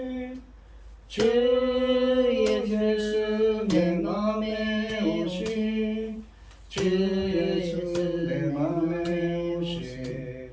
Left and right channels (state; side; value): identical; both; correlation 1.00